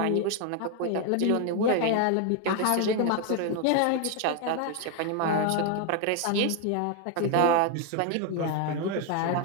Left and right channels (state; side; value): different; both; correlation 0.01